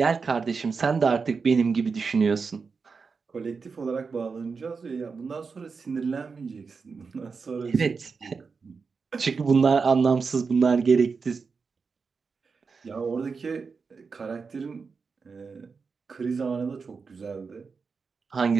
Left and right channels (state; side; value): quieter; left; 5.0 dB